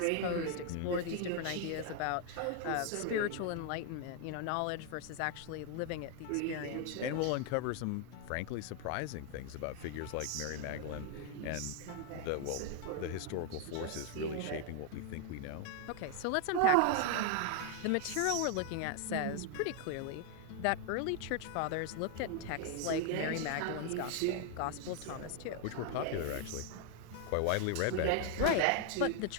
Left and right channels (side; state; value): both; different; correlation 0.00